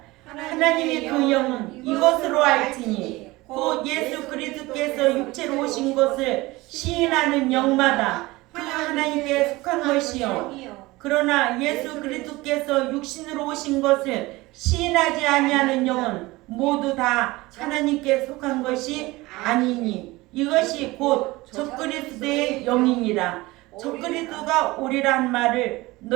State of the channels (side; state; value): left; quieter; 20.7 dB